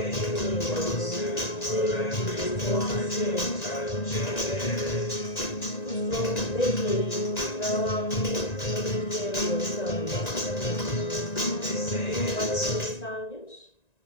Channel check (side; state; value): right; late; 1.9 ms